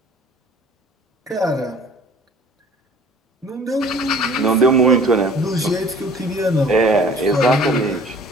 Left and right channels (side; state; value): both; normal; correlation 0.50